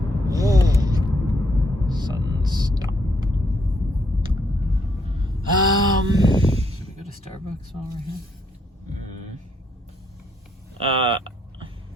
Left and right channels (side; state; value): both; normal; correlation 0.73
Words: Sudden stop. Should we go to Starbucks while we're here?